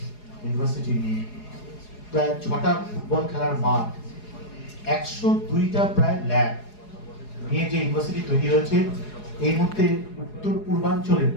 ইউনিভার্সিটি নিয়ে প্রায় 6টা ফুটবল খেলার মাঠ, 102টা প্রায় ল্যাব নিয়ে যে ইউনিভার্সিটি তৈরি হয়েছে, এই মুহূর্তে উত্তর পূর্বাঞ্চলের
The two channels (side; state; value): right; late; 4.8 ms